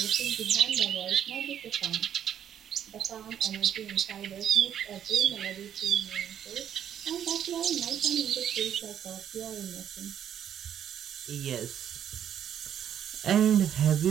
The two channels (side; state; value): left; quieter; 9.5 dB